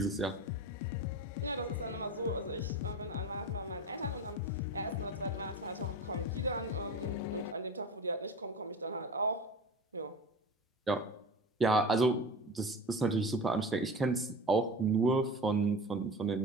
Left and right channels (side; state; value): both; normal; correlation 0.31